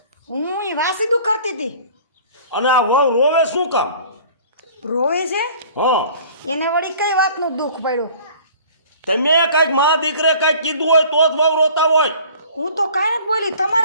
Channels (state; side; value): inverted; both; correlation -0.49